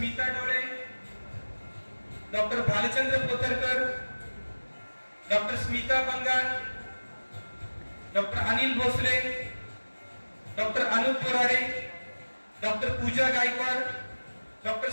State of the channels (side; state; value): both; inverted; correlation -1.00